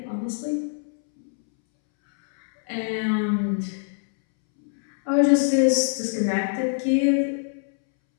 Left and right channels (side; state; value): right; silent; 63 dB below the other